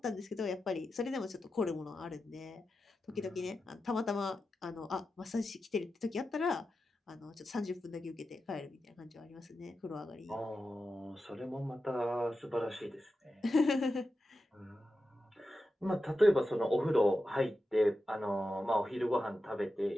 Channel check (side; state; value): both; normal; correlation 0.91